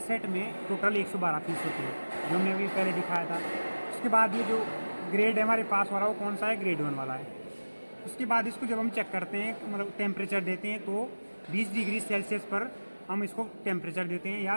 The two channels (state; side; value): inverted; both; correlation -1.00